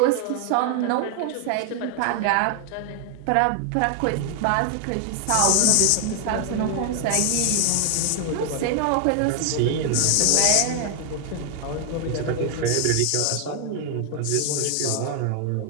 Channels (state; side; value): different; both; correlation 0.00